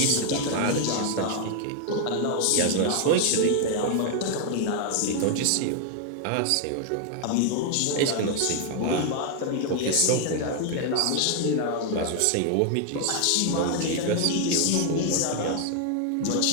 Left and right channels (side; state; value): both; different; correlation 0.00